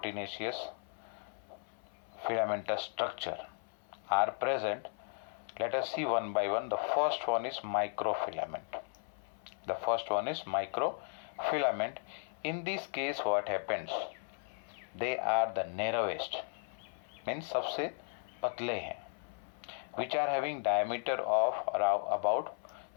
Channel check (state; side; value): silent; right; 54 dB below the other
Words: filamentous structure are present. Let us see one by one. The first one is microfilament. In this case what happens? They are the narrowest, means सबसे पतले हैं, which are having diameter of around about